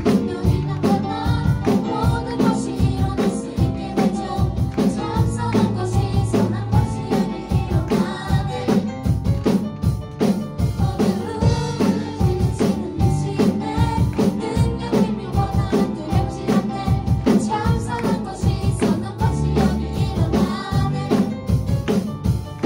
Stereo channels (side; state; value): both; identical; correlation 1.00